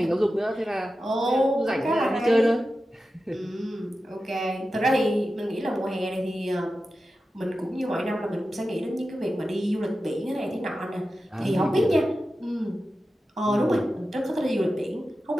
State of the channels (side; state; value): both; normal; correlation 0.92